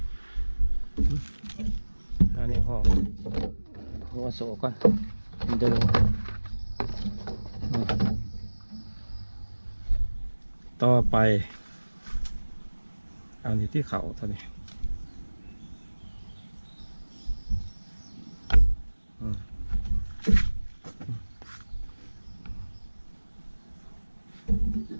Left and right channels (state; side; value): inverted; both; correlation -1.00